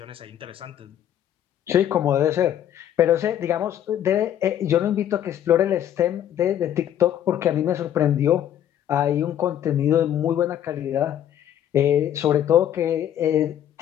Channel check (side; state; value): right; quieter; 10.7 dB